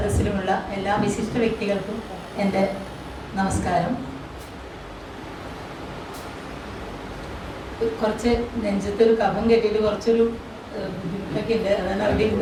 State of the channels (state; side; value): identical; both; correlation 1.00